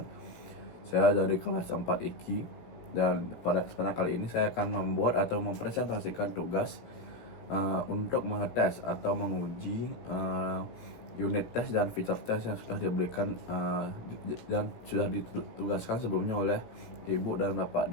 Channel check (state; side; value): late; right; 17 ms